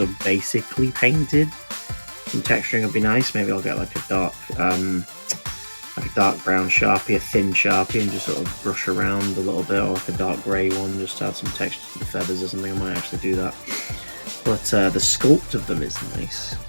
of basically painted. Some texturing would be nice. Maybe I'll get like a dark brown Sharpie, a thin Sharpie, and just sort of brush around a little bit, or like a dark grey one, just to add some texture to the feathers or something. I might actually do that. but the sculpt of them is nice.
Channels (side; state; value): both; inverted; correlation -1.00